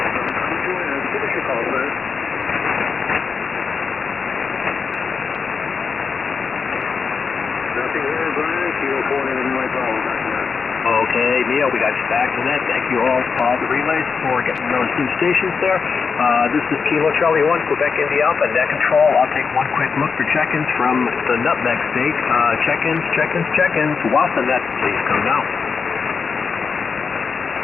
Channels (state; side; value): quieter; right; 5.4 dB